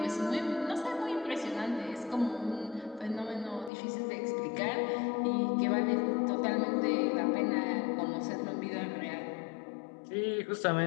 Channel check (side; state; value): right; drops out; at 3.7 s